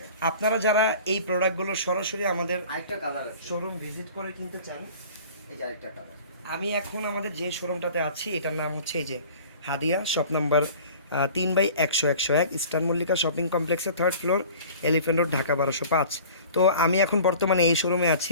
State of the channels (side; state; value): both; inverted; correlation -0.45